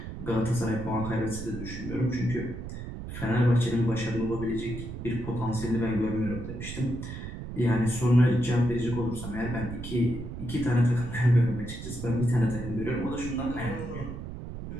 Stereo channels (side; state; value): right; noise; rumble, 8 dB below the sound